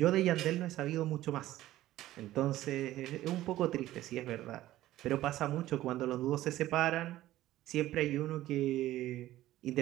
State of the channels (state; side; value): quieter; left; 14.9 dB